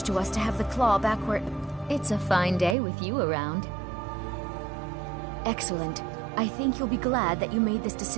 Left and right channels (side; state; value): left; drops out; at 2.8 s